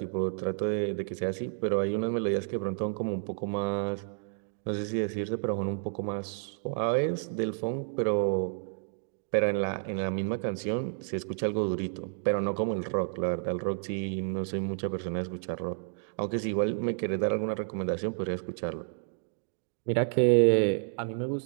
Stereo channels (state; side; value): silent; left; digital silence